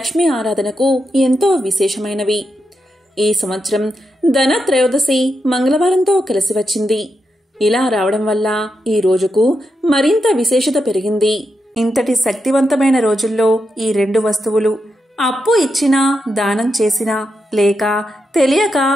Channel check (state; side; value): normal; both; correlation 0.85